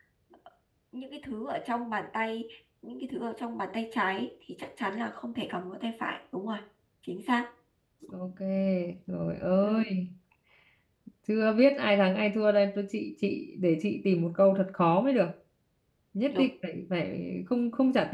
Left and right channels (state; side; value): identical; both; correlation 1.00